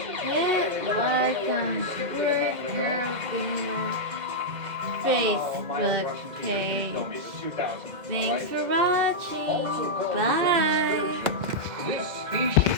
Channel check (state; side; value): late; left; 2.1 ms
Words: hit like on Work Gamer Facebook page. No, it's 2000. Thanks for watching. Also called the Bye. This